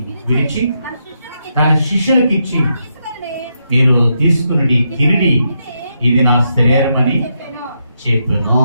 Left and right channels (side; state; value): both; inverted; correlation -0.81